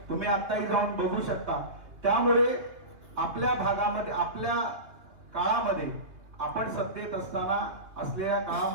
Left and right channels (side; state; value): left; late; 2.9 ms